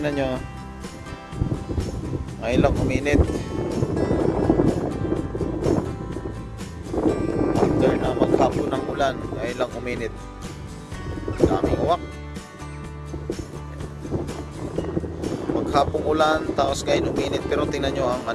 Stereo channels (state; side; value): identical; both; correlation 1.00